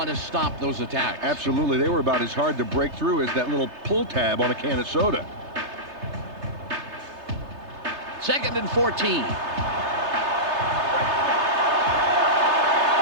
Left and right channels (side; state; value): left; late; 3.3 ms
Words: to stop those attacks. Absolutely. They were about as hard to break through as that little pull tab on a can of soda. Second and 14.